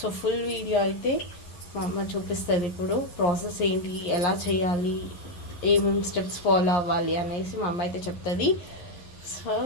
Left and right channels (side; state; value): right; late; 11 ms